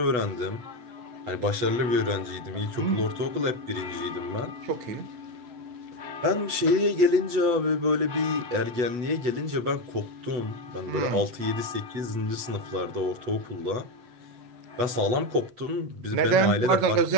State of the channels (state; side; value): late; left; 8.2 ms